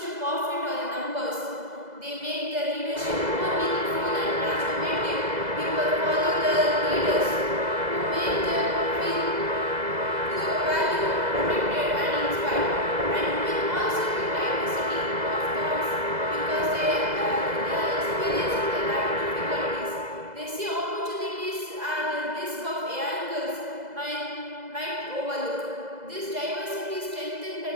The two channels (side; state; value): left; late; 2.0 ms